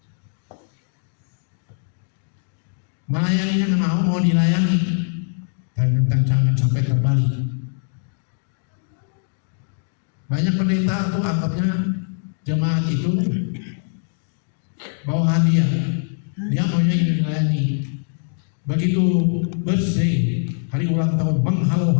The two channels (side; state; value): right; silent; digital silence